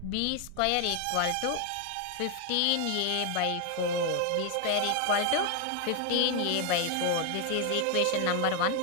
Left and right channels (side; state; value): both; different; correlation 0.01